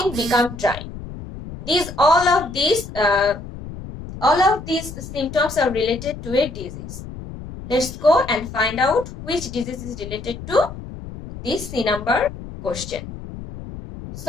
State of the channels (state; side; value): noise; left; rumble, 12 dB below the sound